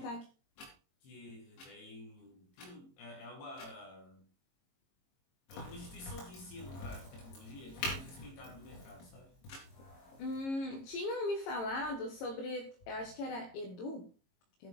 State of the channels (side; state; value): right; late; 22 ms